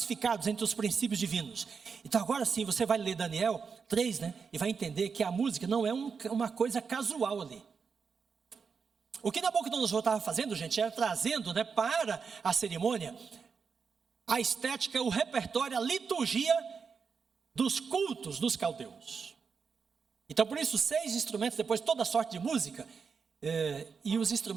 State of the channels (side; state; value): left; quieter; 5.6 dB